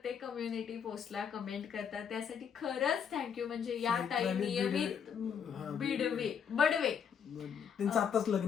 कम्युनिटी पोस्टला कमेंट करतात, त्यासाठी खरंच थँक्यू. म्हणजे या ताई नियमित बडवे. त्यांचं आताच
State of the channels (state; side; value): quieter; right; 7.5 dB